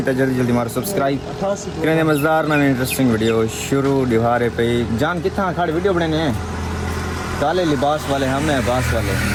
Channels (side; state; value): both; identical; correlation 1.00